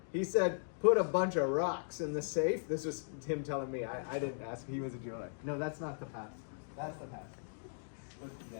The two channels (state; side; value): silent; right; digital silence